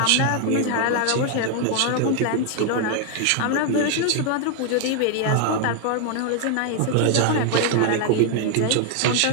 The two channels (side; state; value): both; different; correlation 0.00